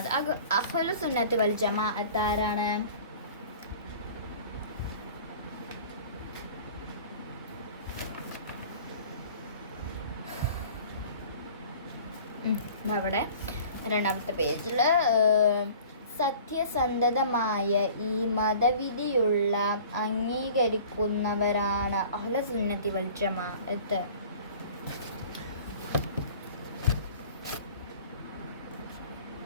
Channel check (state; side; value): inverted; both; correlation -0.46